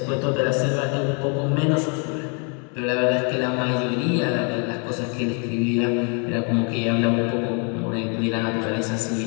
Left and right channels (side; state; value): right; quieter; 36.8 dB